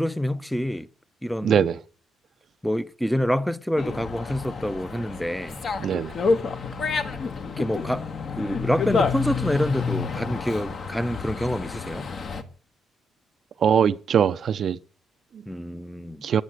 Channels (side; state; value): both; normal; correlation 0.82